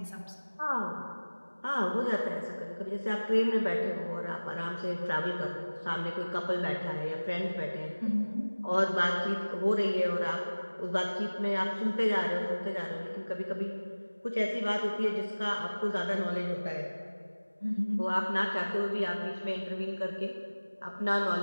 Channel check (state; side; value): inverted; both; correlation -1.00